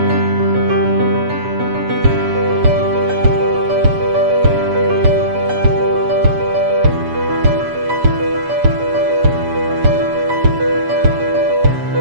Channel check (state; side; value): late; left; 7.1 ms